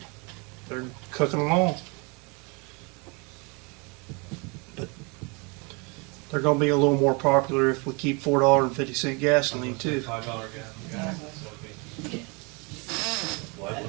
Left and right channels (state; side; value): quieter; left; 30.5 dB